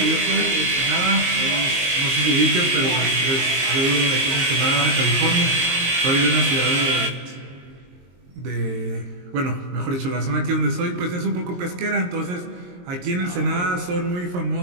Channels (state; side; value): late; left; 22 ms